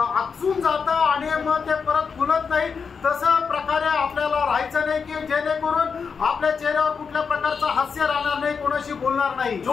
जातं आणि मग ते परत फुलत नाही। तसं प्रकारे आपल्याला राहायचं नाही की जेणेकरून आपल्या चेहऱ्यावर कुठल्या प्रकारचं हास्य राहणार नाही, कोणाशी बोलणार नाही।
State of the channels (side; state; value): right; quieter; 5.8 dB